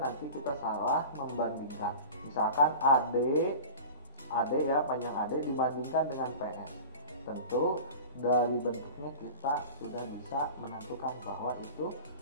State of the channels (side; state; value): both; inverted; correlation -0.35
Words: kita salah membandingkan. Misalkan AD ya, panjang AD dibandingkan dengan PS. Tentu dari bentuknya kita sudah bisa menentukan bahwa itu